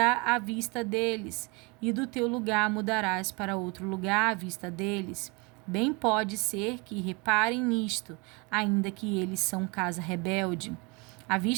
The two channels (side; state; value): left; quieter; 29.0 dB